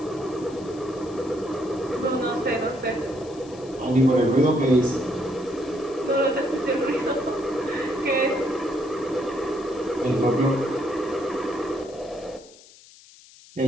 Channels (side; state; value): left; noise; hiss, 23 dB below the sound